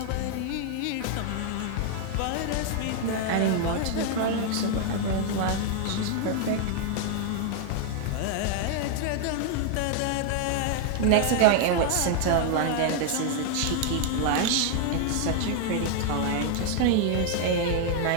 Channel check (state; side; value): different; both; correlation 0.00